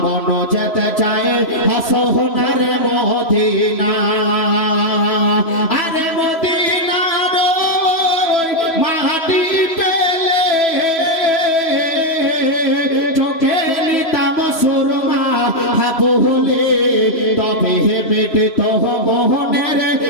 মন যেতে চাই সোনার মদিনা আরে মদিনা মাটি পেলে চোখে নিতাম সুরমা বলে তবে বেটে তো মোহনের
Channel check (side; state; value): right; late; 3.0 ms